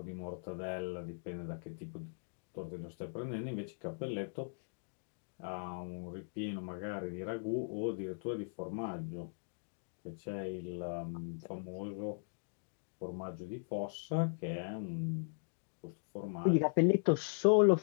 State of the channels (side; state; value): right; silent; digital silence